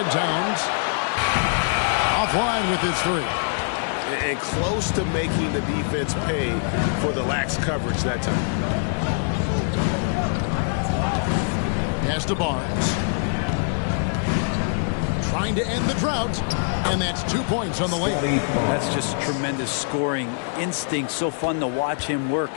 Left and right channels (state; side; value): silent; right; digital silence